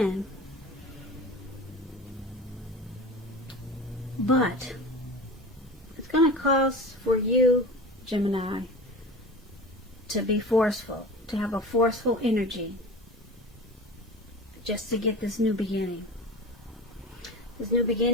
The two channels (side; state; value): both; normal; correlation 0.33